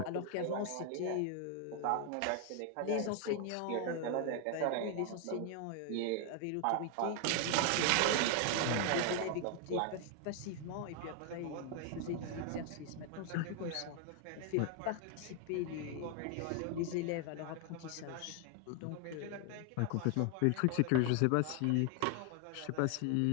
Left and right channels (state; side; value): different; both; correlation 0.00